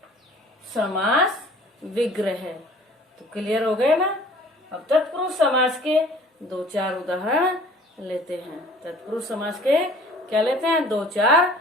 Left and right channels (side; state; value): both; normal; correlation 0.50